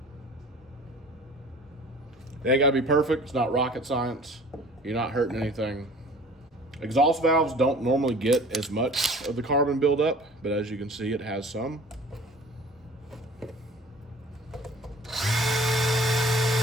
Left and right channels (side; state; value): both; normal; correlation 0.47